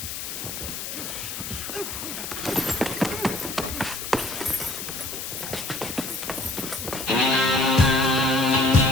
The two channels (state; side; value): noise; left; hiss, 6 dB below the sound